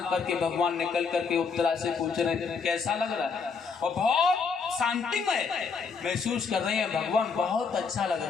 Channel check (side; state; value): right; quieter; 5.3 dB